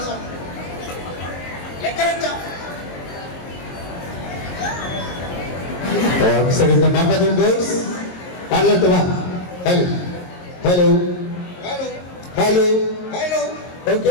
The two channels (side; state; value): right; late; 22 ms